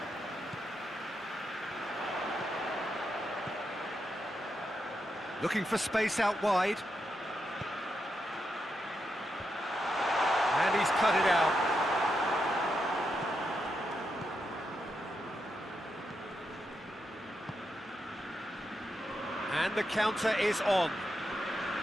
Looking for space out wide. And he's cut it out. And the counter is on.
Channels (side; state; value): both; normal; correlation 0.84